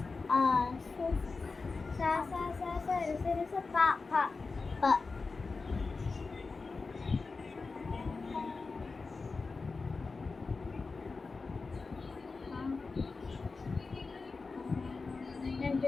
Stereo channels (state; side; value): quieter; right; 4.2 dB